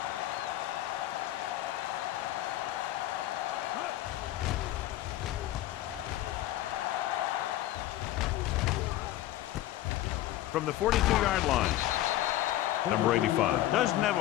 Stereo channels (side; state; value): right; quieter; 14.4 dB